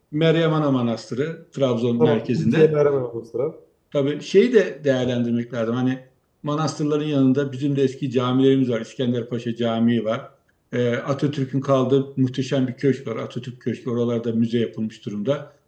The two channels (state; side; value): identical; both; correlation 1.00